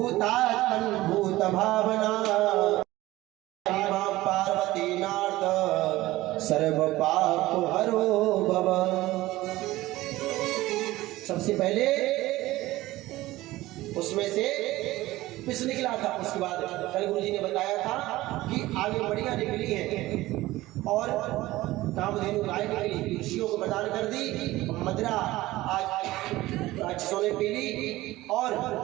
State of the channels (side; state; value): left; quieter; 17.6 dB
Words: भूत भावना पार्वती नाथ सर्व पाप हरो भव। सबसे पहले उसमें से पिस निकला था। उसके बाद कल गुरु जी ने बताया था कि आगे बढ़िया निकली है और कामधेनु गाय निकली, ऋषियों को प्रदान कर दी। मदिरा आज राक्षसों ने पी ली और